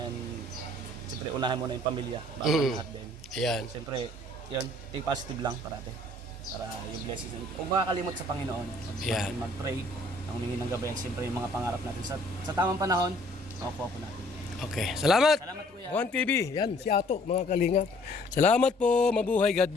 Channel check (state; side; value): normal; both; correlation 0.58